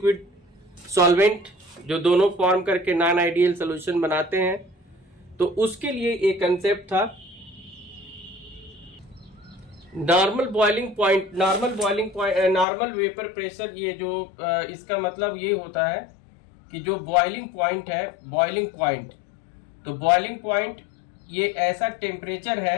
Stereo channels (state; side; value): drops out; right; at 12.7 s